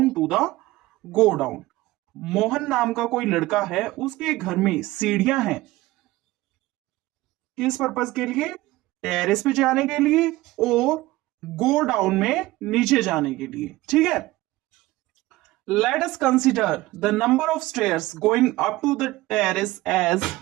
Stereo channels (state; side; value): quieter; left; 18.3 dB